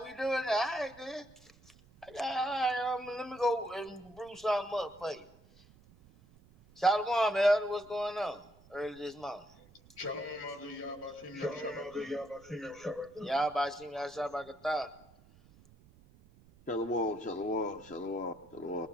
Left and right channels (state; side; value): noise; right; rumble, 25 dB below the sound